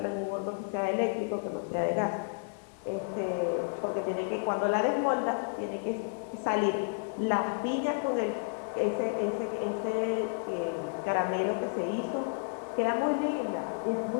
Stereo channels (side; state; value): right; silent; 57 dB below the other